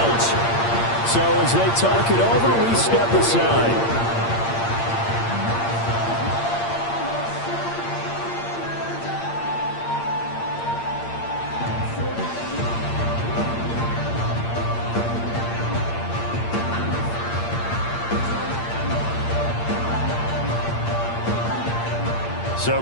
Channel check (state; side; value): late; right; 8.7 ms